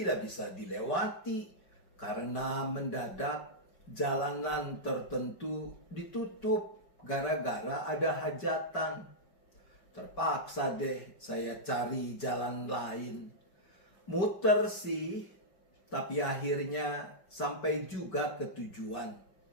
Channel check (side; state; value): right; late; 5.2 ms